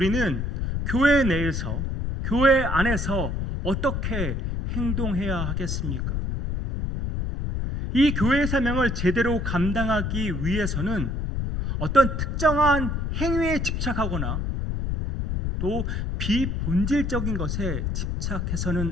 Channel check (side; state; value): left; noise; rumble, 1 dB below the sound